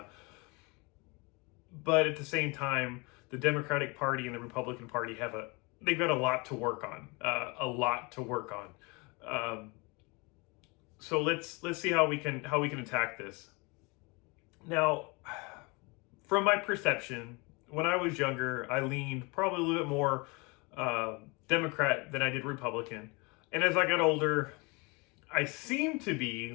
But at the same time, the Democratic Party and the Republican Party they've got a lot to work on. So let's see how we can attack this. Now, from my perception, when I was younger, I leaned probably a little bit more Democrat than I did Republican. And as I got older, I seem to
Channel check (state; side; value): quieter; right; 28.0 dB